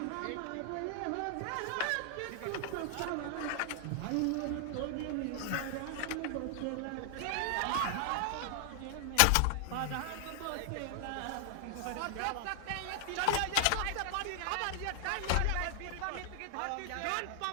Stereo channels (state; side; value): different; both; correlation 0.00